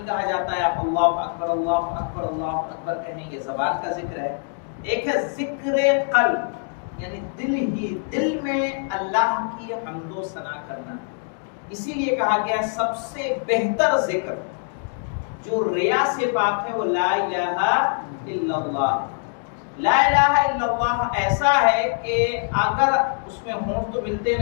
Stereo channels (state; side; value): silent; right; 58 dB below the other